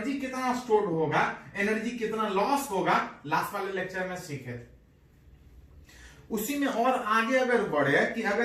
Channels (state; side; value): identical; both; correlation 1.00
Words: कितना स्टोर होगा, एनर्जी कितना लॉस होगा, लास्ट वाले लेक्चर में सीखे थे। उसी में और आगे अगर बढ़े कि